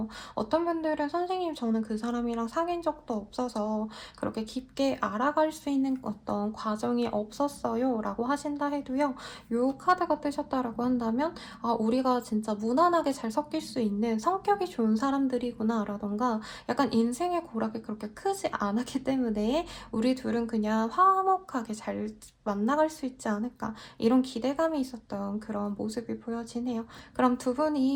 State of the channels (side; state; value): both; identical; correlation 1.00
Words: 어떤 분들은 선생님 저는 그 사람이랑 사귄 적도 없어서 그렇게 깊게 알아갈 수 있는 어떤 과정이 없었어요 라고 하신다 해도요. 이 카드가 뜨셨다라고 한다면 우리가 진짜 무난하게 잘 섞일 수 있는 성격이 좋은 사람들이구나 라던가 약간 인생의 고락이 그렇게 크지 않았기 때문에 우리 둘은 그냥 화목하게 잘 만나갈 수 있지 않을까 이런 기대감이 있었던 그런 모습이 보여지네요. 그럼 두